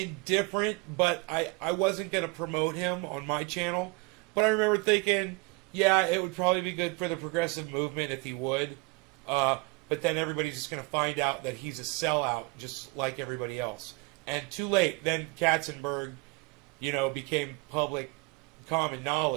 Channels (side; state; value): left; quieter; 26.6 dB